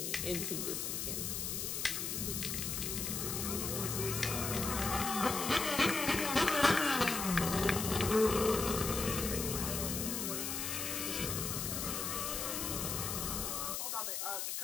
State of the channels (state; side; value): noise; left; hiss, 2 dB below the sound